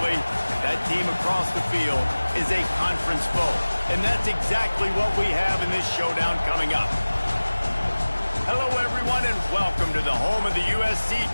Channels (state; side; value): inverted; both; correlation -1.00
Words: that team across the field is a conference foe. And that's exactly what we have in this showdown coming up. Hello, everyone, and welcome to the home of the USC